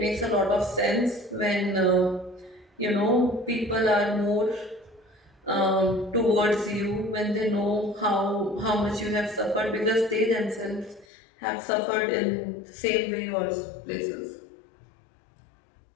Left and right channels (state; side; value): drops out; right; at 11.1 s